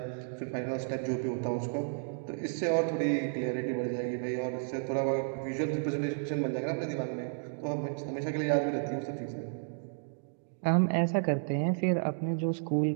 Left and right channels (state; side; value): silent; left; digital silence